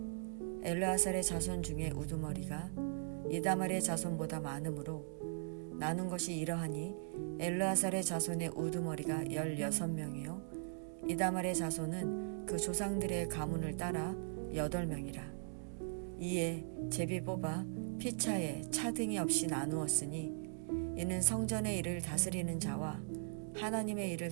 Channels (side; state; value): left; silent; digital silence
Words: 엘르아살의 자손 중에 우두머리가 이다말의 자손보다 많으므로 나눈 것이 이러하니 엘르아살의 자손의 우두머리가 16명이요 이다말의 자손은 그 조상들의 가문을 따라 8명이라. 이에 제비 뽑아 피차에 차등이 없이 나누었으니 이는 성전의 일을 다스리는 자와 하나님의 일을